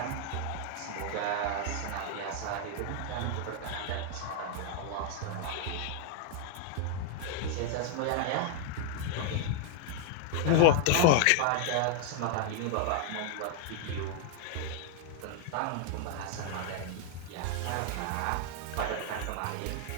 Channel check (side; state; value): both; different; correlation 0.00